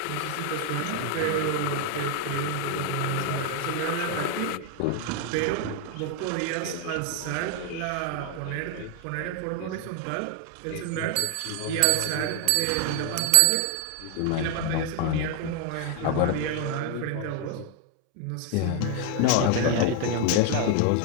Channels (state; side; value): different; both; correlation 0.00